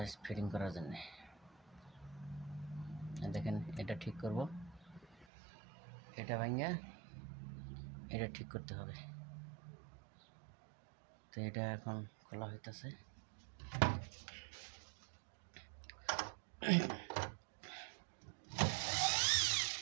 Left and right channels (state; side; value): drops out; left; at 5.2 s